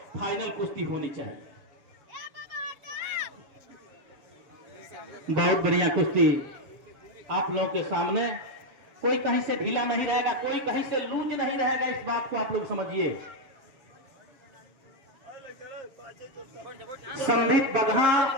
फाइनल कुश्ती होनी चाहिए। बहुत बढ़िया कुश्ती आप लोगों के सामने, कोई कहीं से ढीला नहीं रहेगा, कोई कहीं से लूज नहीं रहेगा, इस बात को आप लोग समझिए। संदीप बगहा,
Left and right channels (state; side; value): late; left; 7.4 ms